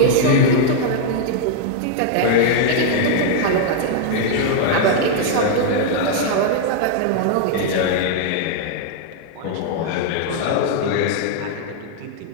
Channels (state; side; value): different; both; correlation 0.00